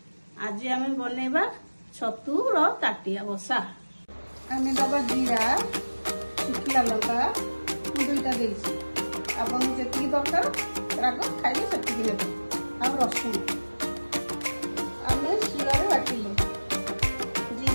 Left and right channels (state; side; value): inverted; both; correlation -1.00